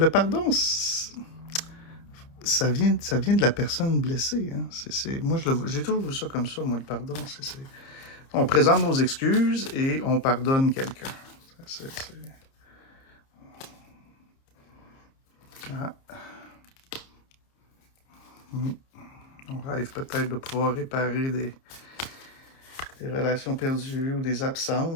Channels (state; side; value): late; right; 30 ms